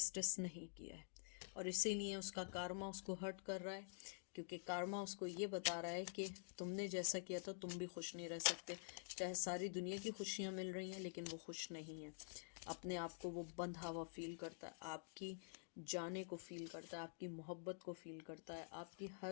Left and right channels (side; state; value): right; silent; digital silence